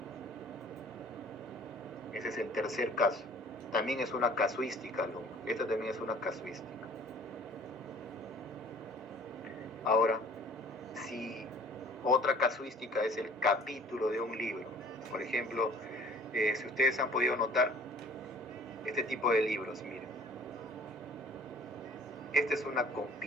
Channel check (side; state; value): both; normal; correlation 0.51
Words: Ese es el tercer caso. También es una casuística, alumno. Esta también es una casuística. Ahora, si otra casuística es el capítulo de un libro, por ejemplo, si ustedes han podido notar este tipo de libros, miren. Esta es una